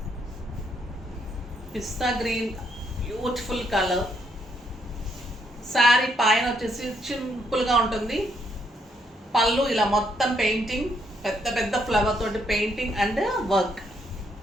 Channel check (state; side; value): normal; both; correlation 0.74